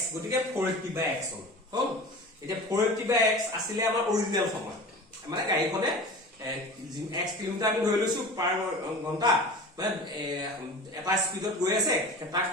গতিকে 480/x হ'ল এতিয়া 480/x আছিলে আমাৰ অৰিজিনাল সময় মানে গাড়ীখনে x কিলোমিটাৰ আমি ধৰি লৈছো পাৰ ঘন্টা মানে এটা স্পিডত গৈ আছে এটা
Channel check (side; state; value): both; normal; correlation 0.36